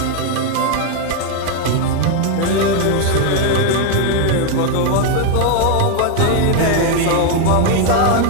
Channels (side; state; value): both; different; correlation 0.01